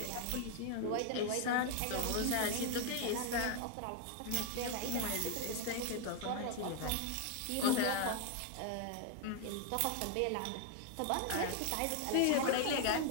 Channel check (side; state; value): both; different; correlation 0.00